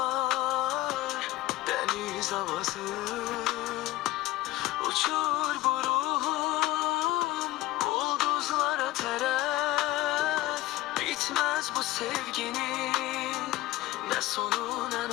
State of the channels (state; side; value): quieter; right; 16.8 dB